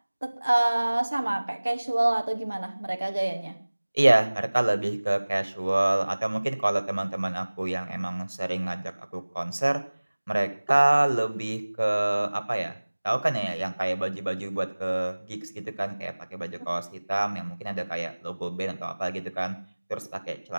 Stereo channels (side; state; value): both; inverted; correlation -1.00